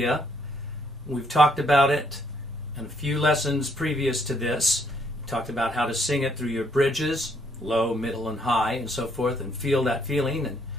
We've talked about it in a few lessons previous to this. We talked about how to sing it through your bridges, low, middle, and high, and so forth, and feel that feeling.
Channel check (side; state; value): both; normal; correlation 0.70